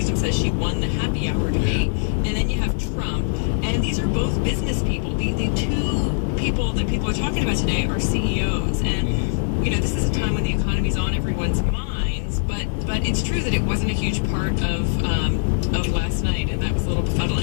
says she won the happy hour debate. And then you have Trump. And these are both business people. The two people that people are talking about today are CEOs. And, this is a time when the economy's on everyone's minds. But it's true that it wasn't a huge part of last night, and that was a little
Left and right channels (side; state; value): right; silent; digital silence